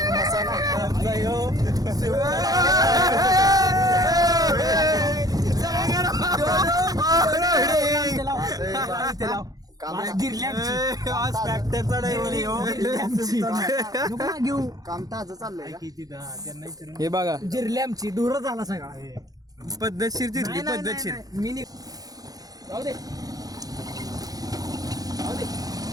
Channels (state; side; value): late; left; 0.18 ms